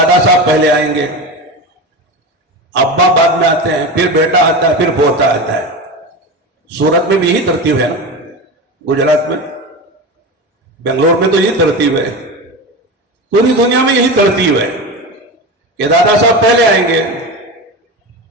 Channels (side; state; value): both; normal; correlation 0.24